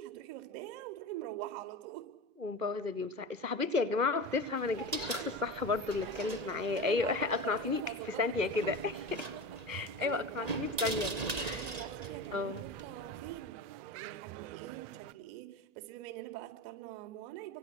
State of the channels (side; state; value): left; late; 1.9 ms